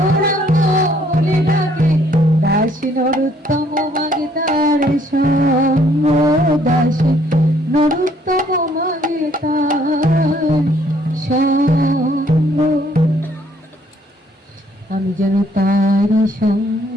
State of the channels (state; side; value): normal; both; correlation 0.64